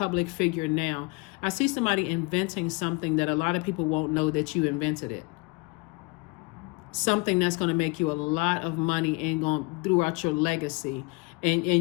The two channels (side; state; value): right; quieter; 27.2 dB